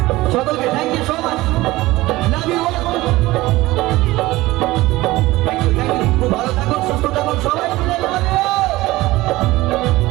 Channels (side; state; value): left; quieter; 18.8 dB